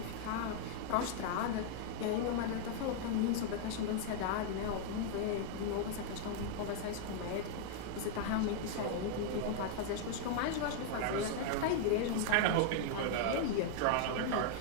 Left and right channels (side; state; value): both; different; correlation 0.00